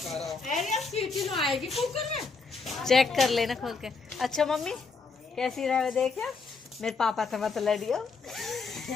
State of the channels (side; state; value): right; quieter; 4.5 dB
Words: आएगी कुकर में। चेक कर लेना खोल के। अच्छा मम्मी कैसी रहे देखिए, मेरे पापा से मत लड़ियो।